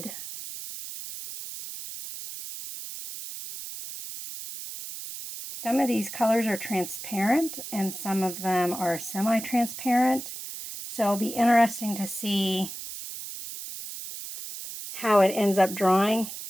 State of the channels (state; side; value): noise; right; hiss, 10 dB below the sound